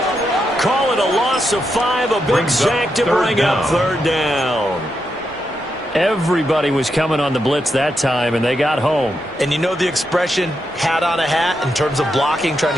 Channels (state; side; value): normal; both; correlation 0.84